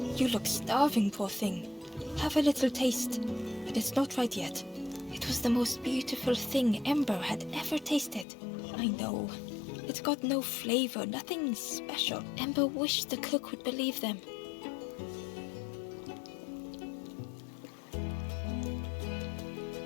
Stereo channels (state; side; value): drops out; right; at 8.2 s